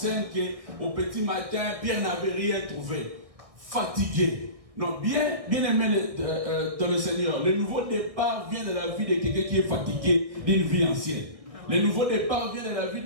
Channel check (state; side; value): late; left; 1.6 ms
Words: qu'au petit matin, Pierre n'avait rien trouvé. Fatigué. Non, bien aimé dans le Seigneur. Le nouveau départ vient de la vie de quelqu'un qui est fatigué d'une vie ancienne. Le nouveau départ vient de la